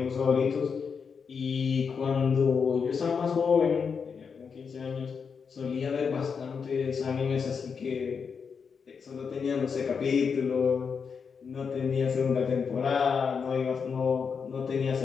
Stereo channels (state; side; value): quieter; right; 6.0 dB